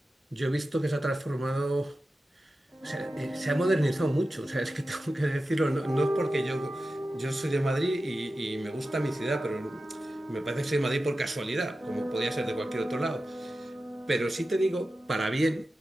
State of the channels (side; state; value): both; normal; correlation 0.93